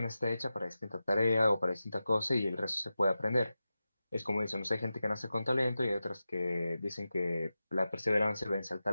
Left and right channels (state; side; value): inverted; both; correlation -0.93